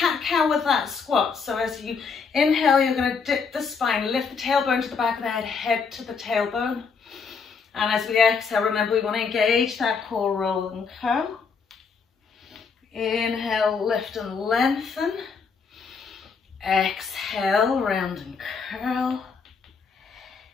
with that squat. So as you inhale, you're going to dip the spine, lift the tailbone to the back of the head, head to the tailbone. And as we exhale, remember we want to engage that core roll and curl. Inhale, lift and lengthen. Exhale, round and curl.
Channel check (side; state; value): right; quieter; 5.5 dB